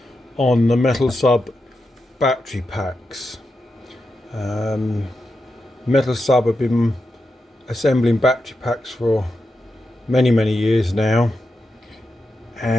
on the Metalsub battery packs. Metalsub have been assembling battery packs for many years now,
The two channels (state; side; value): normal; both; correlation 0.88